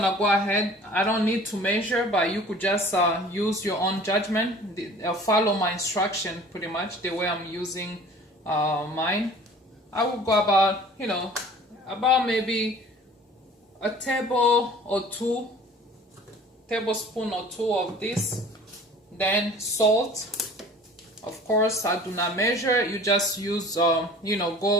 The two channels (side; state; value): both; normal; correlation 0.46